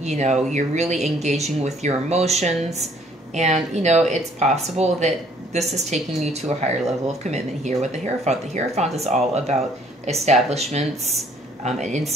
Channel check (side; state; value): both; normal; correlation 0.61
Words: know, you're really engaging with your emotions. And, you know, it's possible that this is taking you to a higher level of commitment here with the Hierophant. The Hierophant is all about establishments and